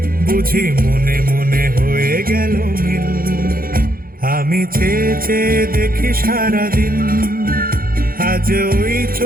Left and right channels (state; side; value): late; left; 0.42 ms